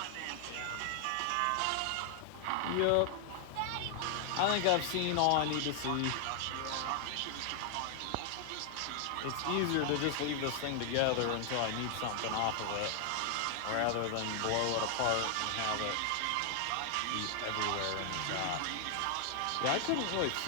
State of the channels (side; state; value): both; different; correlation 0.00